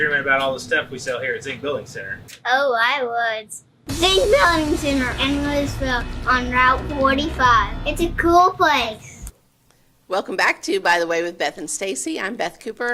about all the stuff we sell here at Zink Building Center. Oh, I would. Zink Building Center in Louisville on Route 45. It's a cool place. Welcome back to By the Way with Beth and Stacey. I'm Beth Cooper.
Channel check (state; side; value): identical; both; correlation 1.00